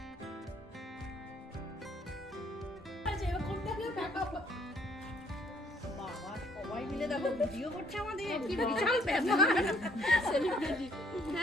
সবাই মিলে দেখো ভিডিও করছে আমাদের, কি বিশাল ব্যাপার। সেলিব্রিটি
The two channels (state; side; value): normal; both; correlation 0.64